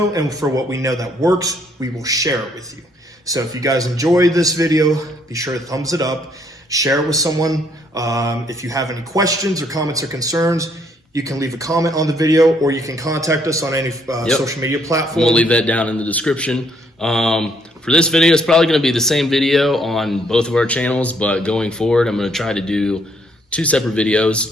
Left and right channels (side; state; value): both; normal; correlation 0.68